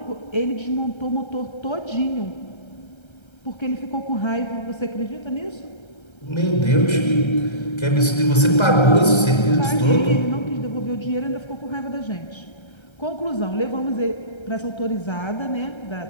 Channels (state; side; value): late; right; 1.3 ms